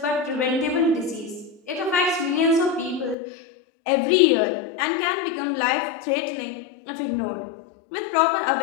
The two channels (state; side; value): drops out; right; at 3.2 s